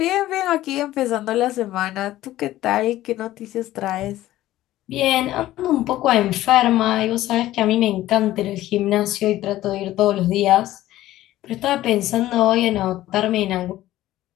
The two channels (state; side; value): quieter; right; 15.0 dB